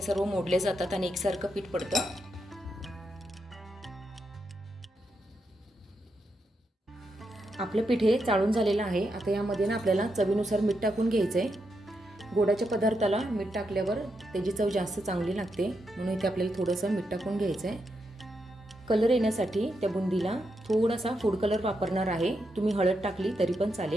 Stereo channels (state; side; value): normal; both; correlation 0.83